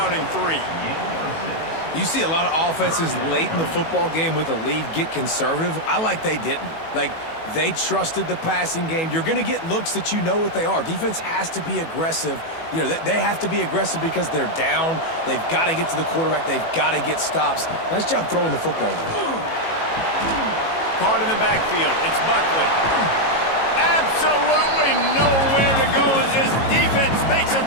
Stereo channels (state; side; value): late; right; 18 ms